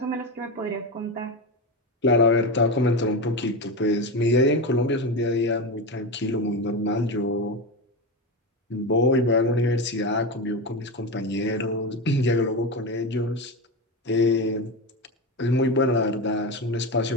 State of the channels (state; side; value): normal; both; correlation 0.18